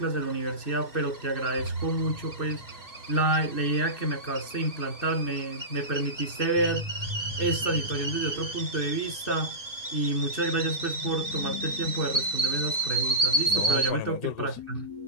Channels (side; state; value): right; late; 2.5 ms